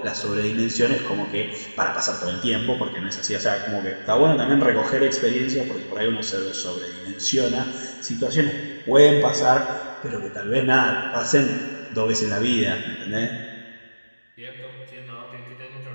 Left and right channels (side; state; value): both; inverted; correlation -1.00